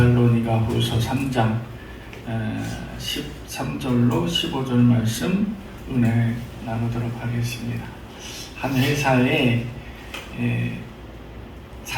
후서 3장 13절로 15절 말씀 은혜 나누도록 하겠습니다. 한 회사에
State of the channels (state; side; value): identical; both; correlation 1.00